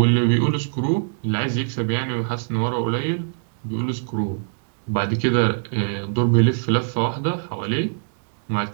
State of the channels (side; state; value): left; silent; 64 dB below the other